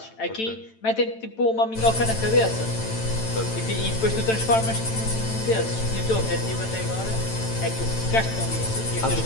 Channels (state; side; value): late; right; 9.0 ms